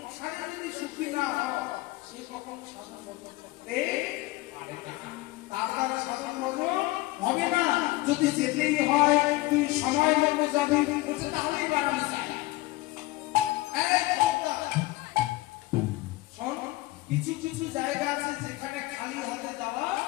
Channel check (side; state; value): right; quieter; 19.2 dB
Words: যদি সুখী না হয় সে কখন সাধন করতে পারে না, তার দ্বারা সাধন হবে না। যদি যেতেই হয় তুই সময় মতো যাবি, বলছে তাহলেই বাড়ানো যায়। কিছু কিছু জায়গা আছে যেখানে খালি হাতে যাওয়া